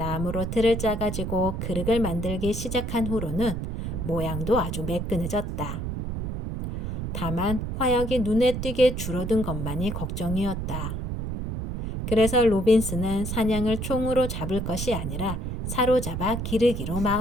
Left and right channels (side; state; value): right; noise; rumble, 4 dB below the sound